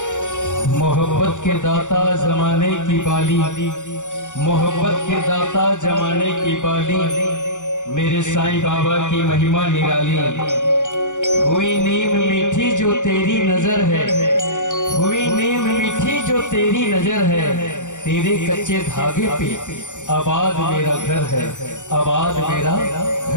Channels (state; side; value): late; right; 0.86 ms